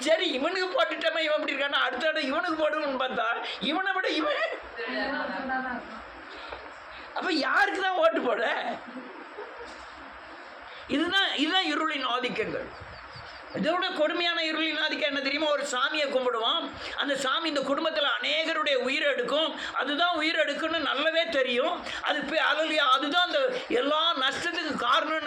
சரி, இவனுக்கு போட்டுட்டமே இவன் இப்படி இருக்கானா, அடுத்த இடம் இவனுக்கு போடுன்னு பார்த்தா இவனை விட இவன். அப்போ யாருக்கு தான் ஓட்டு போட? இதுதான் இருளின் ஆதிக்கங்கள். இதோட கொடுமையான இருளின் ஆதிக்கம் என்ன தெரியுமா? ஒரு சாமியை கும்பிடுவோம், அந்த சாமி இந்த குடும்பத்தில் அநேகருடைய உயிரை எடுக்கும், அதுதான் உயிர் எடுக்குன்னு நல்லாவே தெரியும். அதுதான் அந்த எல்லா நஷ்டத்துக்கு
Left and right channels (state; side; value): identical; both; correlation 1.00